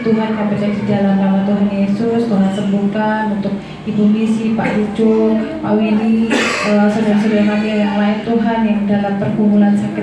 Tuhan, kami percaya di dalam nama Tuhan Yesus, Tuhan sembuhkan untuk Ibu Misi, Pak Lucu, Pak Willy, saudara-saudara kami yang lain Tuhan yang dalam pergumulan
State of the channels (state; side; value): identical; both; correlation 1.00